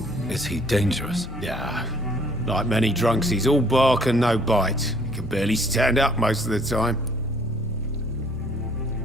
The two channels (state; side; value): normal; both; correlation 0.59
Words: Is he dangerous? Yeah, like many drunks, he's all bark and no bite. He can barely stand up most of the time.